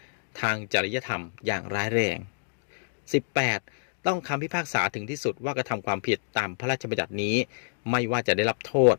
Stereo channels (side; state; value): right; silent; digital silence